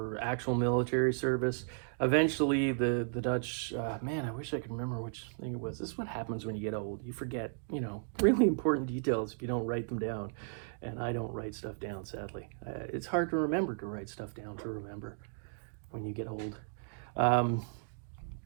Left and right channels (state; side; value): silent; left; digital silence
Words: actual military service. Eventually, the Dutch, man, I wish I could remember which thing it was. This is what happens when you get old. You forget, you know, really important details if you don't write them down. And I don't write stuff down, sadly. It's hard to remember to write stuff down to remember when you get old.